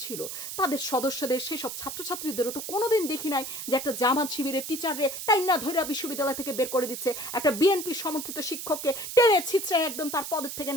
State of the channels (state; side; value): noise; right; hiss, 7 dB below the sound